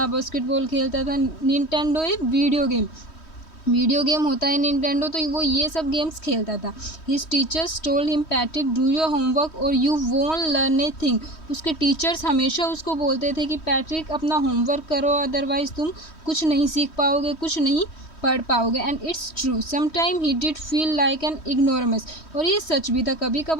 बास्केटबॉल खेलता था. निंटेंडो एक वीडियो गेम होता है निंटेंडो, तो वो ये सब गेम्स खेलता था. His teachers told him Patrick do your homework or you won't learn a thing. उसके टीचर्स हमेशा उसको बोलते थे कि पैट्रिक अपना होमवर्क करो, अदरवाइज तुम कुछ नहीं सीख पाओगे, कुछ नहीं पढ़ पाओगे. And it's true, sometime he did feel like an ignoramus. और ये सच भी था, कभी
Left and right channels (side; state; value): right; late; 3.1 ms